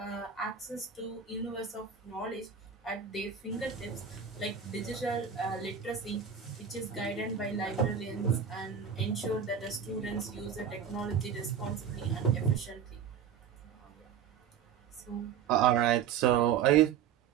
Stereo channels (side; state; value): left; quieter; 7.6 dB